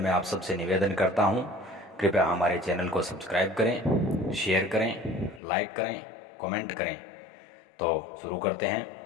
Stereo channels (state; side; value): drops out; right; at 5.4 s